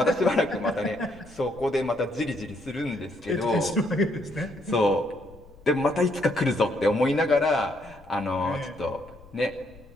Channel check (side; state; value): left; noise; rumble, 23 dB below the sound